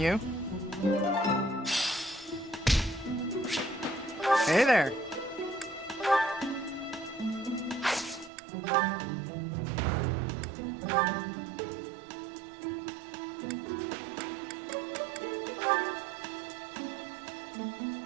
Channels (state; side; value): drops out; left; at 8.3 s